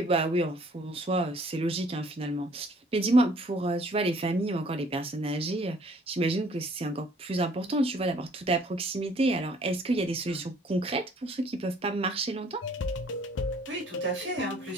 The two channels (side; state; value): both; normal; correlation 0.58